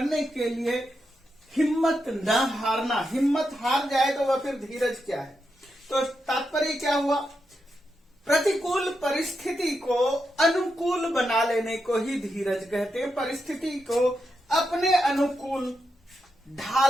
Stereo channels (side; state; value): both; normal; correlation 0.85